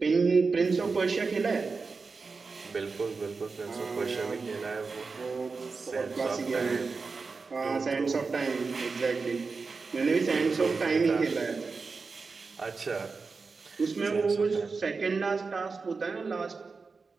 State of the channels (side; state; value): left; quieter; 4.5 dB